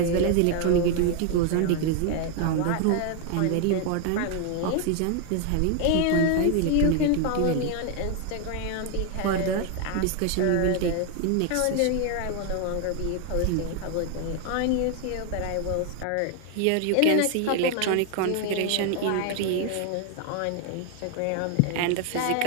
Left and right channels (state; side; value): different; both; correlation 0.01